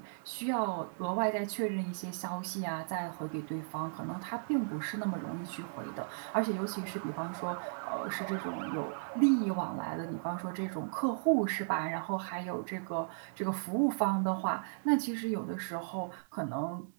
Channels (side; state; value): left; silent; 54 dB below the other